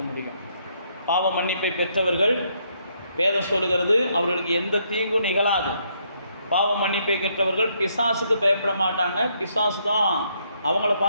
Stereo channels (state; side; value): inverted; both; correlation -0.73